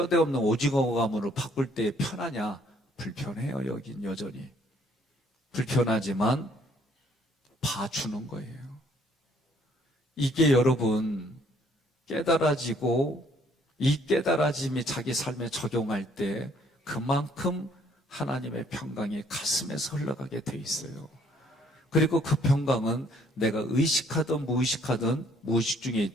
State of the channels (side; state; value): both; normal; correlation 0.63